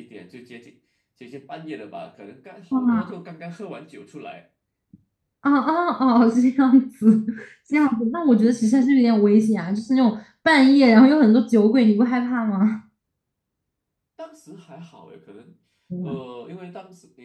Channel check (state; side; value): identical; both; correlation 1.00